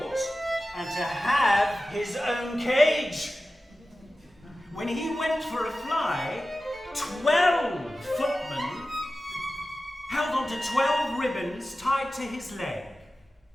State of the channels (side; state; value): both; normal; correlation 0.95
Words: and to have his own cage. When he went for a fly, 12 footmen held onto 12 ribbons tied to his leg.